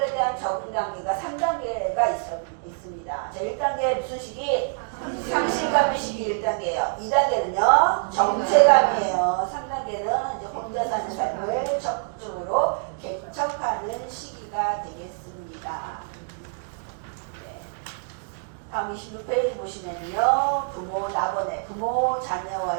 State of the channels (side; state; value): left; silent; 61 dB below the other